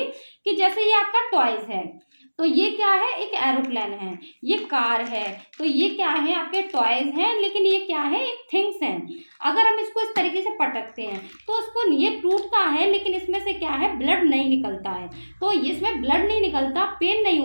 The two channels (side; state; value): both; inverted; correlation -1.00